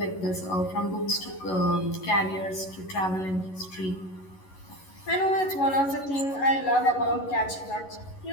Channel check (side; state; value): right; late; 11 ms